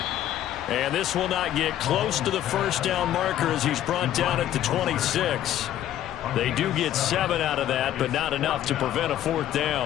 And this will not get close to the first down marker as he's brought down at the 26. They do get 7 out of that, but not enough to prevent a 4th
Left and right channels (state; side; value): quieter; right; 12.0 dB